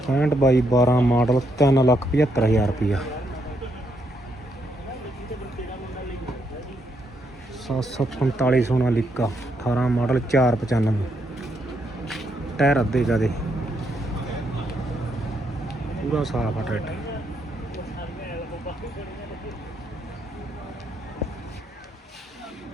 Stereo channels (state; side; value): normal; both; correlation 0.77